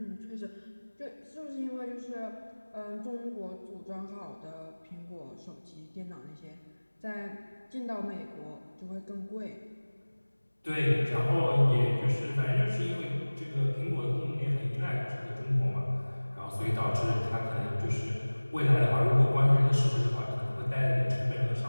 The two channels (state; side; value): inverted; both; correlation -1.00